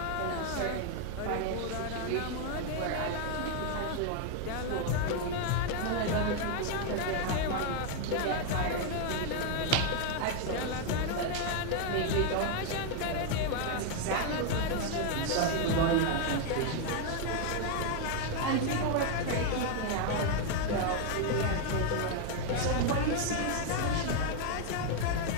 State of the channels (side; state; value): both; different; correlation 0.01